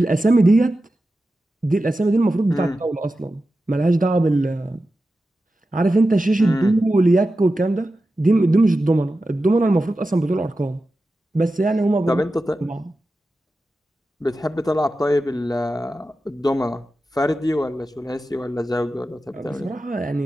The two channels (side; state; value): both; normal; correlation 0.92